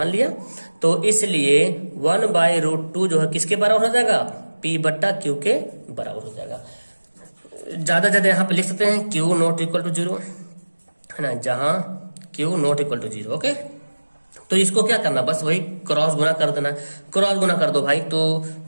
लिया। तो इसलिए 1/√2 जो है किसके बराबर हो जाएगा, P/Q के बराबर हो जाएगा। ज्यादा यहाँ पे लिख सकते हैं Q ≠ = 0, है ना, जहां Q ≠ = 0, ओके। तो इसको क्या करना, बस वही क्रॉस गुना कर देना, क्रॉस गुना कर दो भाई, तो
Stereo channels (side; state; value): both; inverted; correlation -1.00